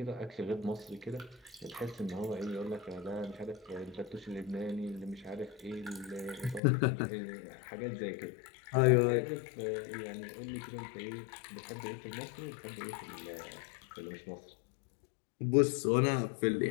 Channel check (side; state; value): right; drops out; at 6.6 s